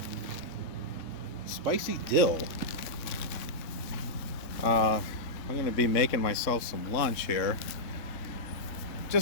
Spicy dill. I'm going to be making myself some lunch here.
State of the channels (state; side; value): late; right; 3.6 ms